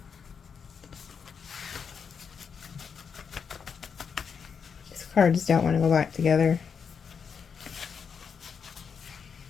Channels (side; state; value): right; quieter; 6.5 dB